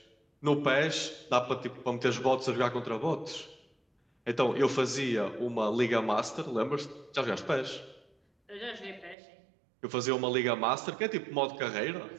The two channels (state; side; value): drops out; left; at 9.2 s